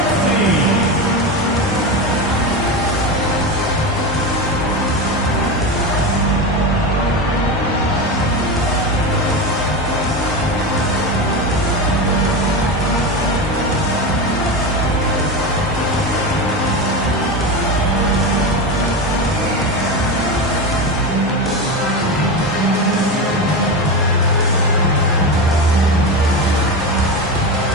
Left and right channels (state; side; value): normal; both; correlation 0.20